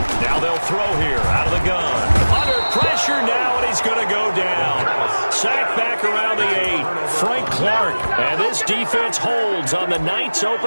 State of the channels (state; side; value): inverted; both; correlation -1.00